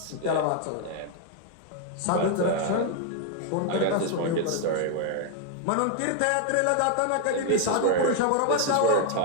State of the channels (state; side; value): different; both; correlation 0.00